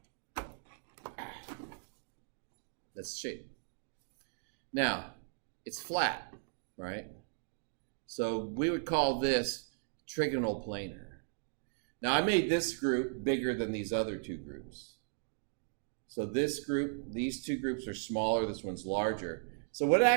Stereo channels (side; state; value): left; silent; digital silence